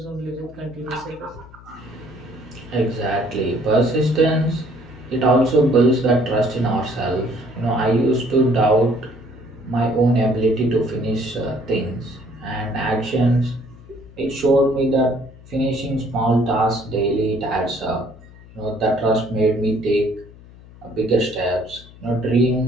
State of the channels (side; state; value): left; noise; hum, 21 dB below the sound